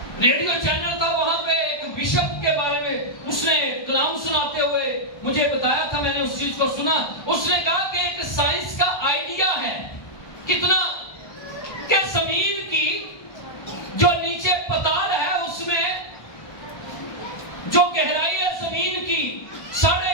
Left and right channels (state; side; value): late; right; 1.2 ms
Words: ریڈیو چینل تھا، وہاں پہ ایک بشپ کے بارے میں اس نے کلام سناتے ہوئے مجھے بتایا تھا، میں نے اس چیز کو سنا۔ اس نے کہا کہ ایک سائنس کا آئیڈیا ہے کتنا کہ زمین کی جو نیچے پتال ہے اس میں جو گہرائی ہے زمین کی